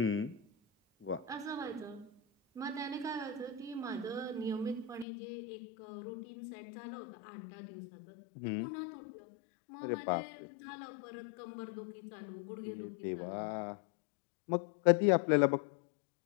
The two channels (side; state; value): right; drops out; at 5.1 s